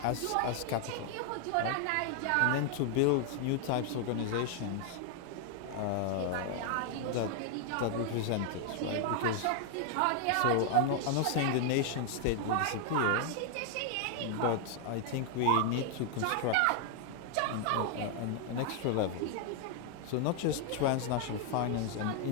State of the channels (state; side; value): different; both; correlation 0.00